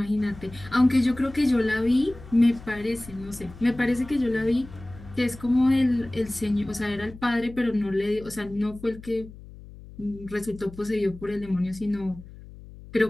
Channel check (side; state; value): left; noise; hum, 17 dB below the sound